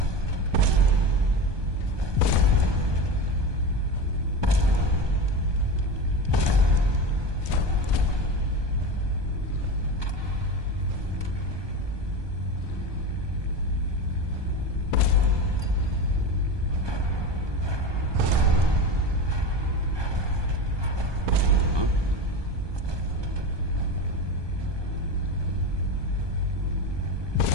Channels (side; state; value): left; late; 1.2 ms